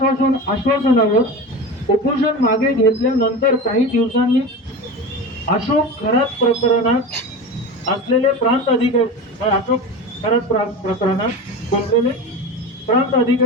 उपोषण मागे घेतल्यानंतर काही दिवसांनी अशोक खरात प्रकरणात असलेले प्रांत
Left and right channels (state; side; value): normal; both; correlation 0.27